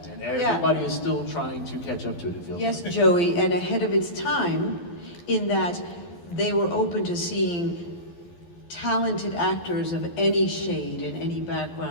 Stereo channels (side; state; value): right; late; 12 ms